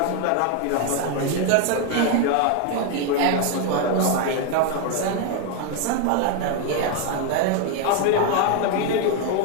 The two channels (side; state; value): both; different; correlation 0.01